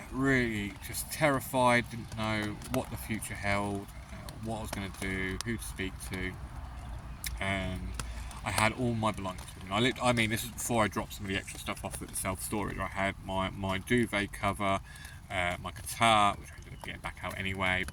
really just terrified, didn't know what the future held, what I was going to do, who to speak to, and I had all my belongings with me. I mean, this is before I dropped some of the extra stuff off at the self-storage. I had my duvet cover, my guitar, which I ended up getting back out anyway,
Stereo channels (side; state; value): both; identical; correlation 1.00